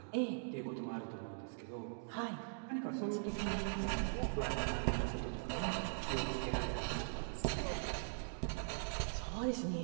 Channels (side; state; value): left; silent; digital silence